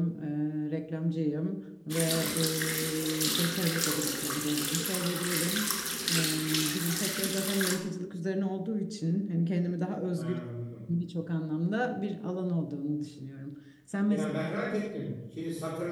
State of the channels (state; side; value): identical; both; correlation 1.00